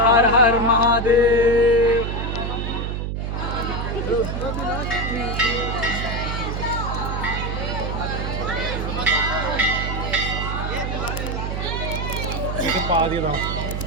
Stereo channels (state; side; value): noise; right; hum, 2 dB below the sound